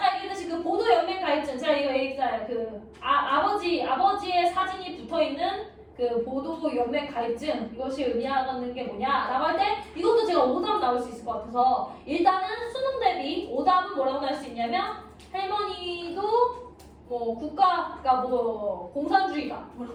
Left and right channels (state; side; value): identical; both; correlation 1.00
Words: 얘기했듯이 그 보도 연맹 가입증 제가 이거 얘기했잖아요. 그 아버지의 사진이 붙어있는 그 보도 연맹 가입증 이것이 의미하는 게 뭐냐라고 할 때 이것도 제가 오답 나올 수 있을 것 같아서 일단은 수능 대비 오답은 뭐라고 할 수 있냐면 할머니도 뭐 국가가 뭐 공산주의다 뭐